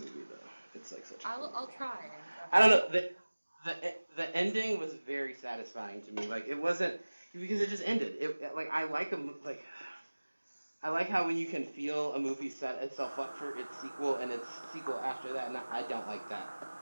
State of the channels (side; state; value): both; inverted; correlation -1.00